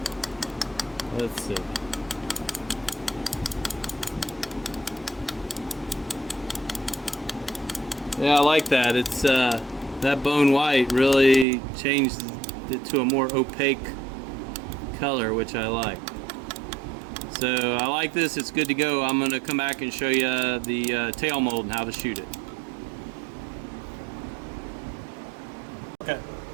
Let's see. Yeah, I like that. It's that Bone White really changed it to a more opaque color, which I like. So I like this. It's good to go. I'm going to come back and show you the tail mold and how to shoot it. Okay.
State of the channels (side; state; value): left; drops out; at 11.5 s